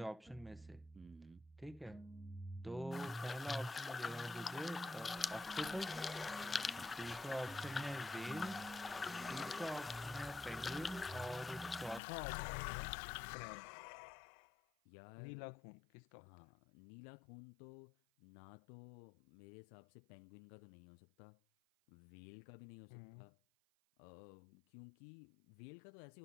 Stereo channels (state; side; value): drops out; right; at 12.0 s